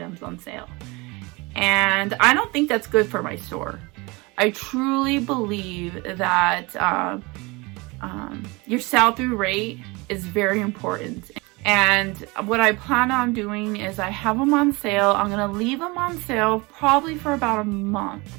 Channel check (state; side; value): quieter; left; 25.5 dB